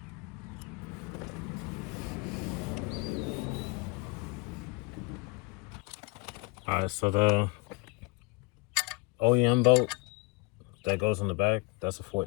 Alright, so the OEM bolt that goes in the back, that's a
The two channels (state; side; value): quieter; right; 26.7 dB